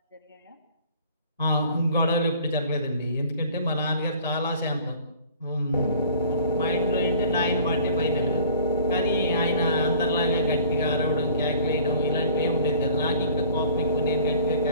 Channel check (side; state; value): both; inverted; correlation -0.49